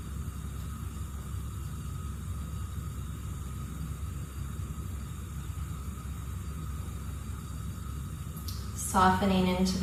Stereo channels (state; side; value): identical; both; correlation 1.00